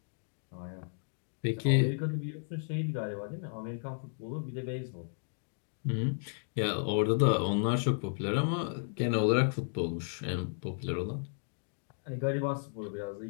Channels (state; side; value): silent; right; digital silence